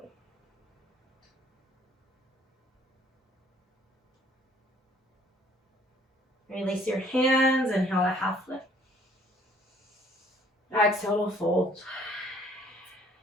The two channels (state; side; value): normal; both; correlation 0.59